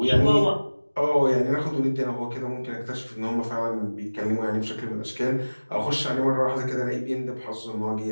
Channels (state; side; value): inverted; both; correlation -1.00